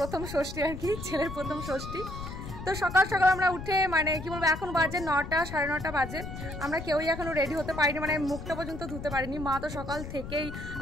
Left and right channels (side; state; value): left; noise; rumble, 9 dB below the sound